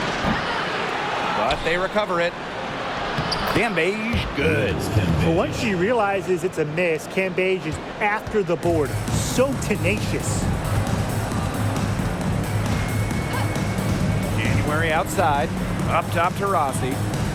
But they recover it. Cambage, good. But once she realizes it's a miss, Cambage is after the board. So tenacious. January outside. Up top to Rossi.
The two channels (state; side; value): identical; both; correlation 1.00